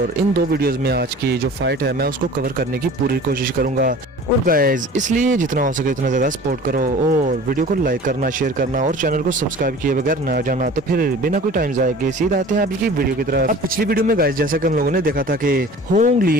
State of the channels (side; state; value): both; normal; correlation 0.43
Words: इन दो वीडियोस में आज की जो फाइट है मैं उसको कवर करने की पूरी कोशिश करूंगा। और गाइस इसलिए जितना हो सके उतना ज़्यादा सपोर्ट करो और वीडियो को लाइक करना, शेयर करना और चैनल को सब्सक्राइब किए बगैर ना जाना। तो फिर बिना कोई टाइम जाए के सीधा आते हैं अभी की वीडियो की तरफ। अब पिछली वीडियो में गाइस जैसा कि हम लोगों ने देखा था कि होंग